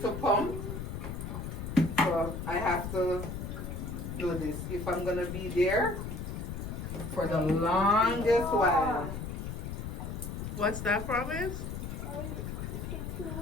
pump. So I have to do this if I'm gonna be there for the longest while. What's that, Promise?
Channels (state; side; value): noise; left; rumble, 5 dB below the sound